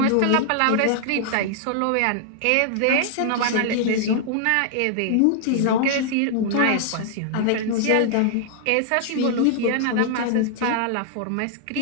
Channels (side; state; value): both; different; correlation -0.01